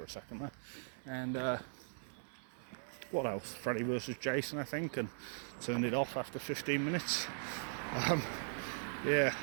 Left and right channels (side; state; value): left; silent; digital silence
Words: a second there. And what else? Freddy vs Jason, I think, and turned it off after 15 minutes. Yeah,